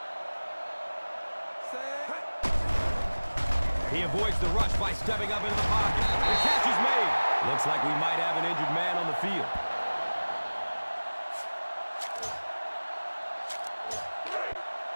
He avoids the rush by stepping up into the pocket. The catch is made. Looks like we might have an injured man on the field.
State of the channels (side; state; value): both; inverted; correlation -1.00